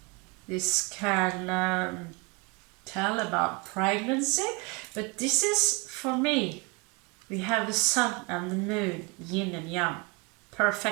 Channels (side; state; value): left; quieter; 28.4 dB